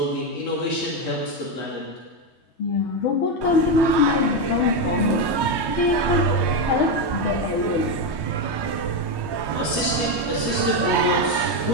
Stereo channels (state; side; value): late; right; 3.2 ms